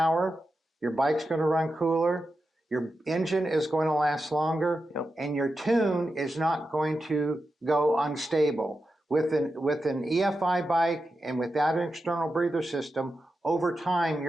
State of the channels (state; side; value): normal; both; correlation 0.90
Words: your bike's going to run cooler, your engine is going to last longer, and your tune is not going to go unstable. With an EFI bike and without an external breather system, over time